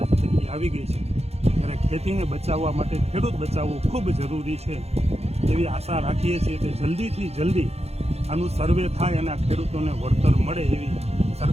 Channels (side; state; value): left; late; 0.30 ms